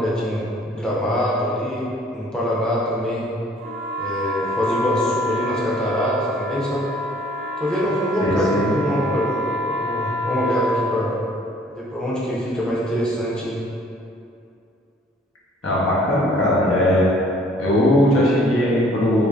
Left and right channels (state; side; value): normal; both; correlation 0.57